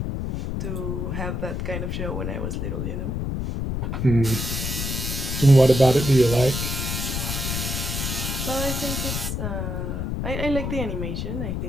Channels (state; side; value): noise; left; rumble, 2 dB below the sound